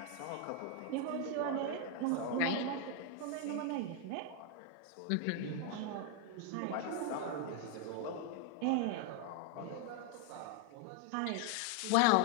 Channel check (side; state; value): both; different; correlation 0.01